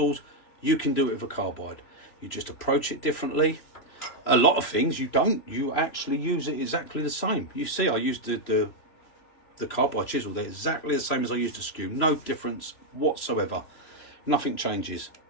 you can do it with a carbide. You just approach it differently. A lot of things you actually use it exactly the same. You see, I used the carbide chisel, they're exactly the same as I used the skew, no difference whatsoever. Nothing changes.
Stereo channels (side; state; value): right; late; 3.0 ms